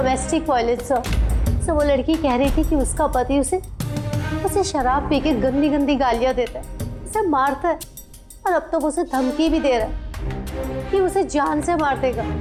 violence. सर वो लड़की कह रही थी कि उसका पति उसे शराब पी के गंदी गंदी गालियां देता है, उसे मारता है, और अब तो वो उसे धमकी भी दे रहा है कि उसे जान से मार देगा,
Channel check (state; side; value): identical; both; correlation 1.00